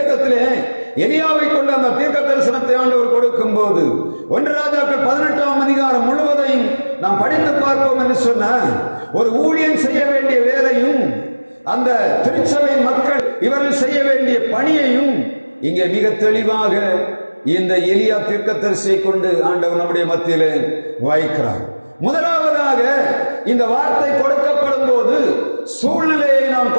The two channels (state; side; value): inverted; both; correlation -1.00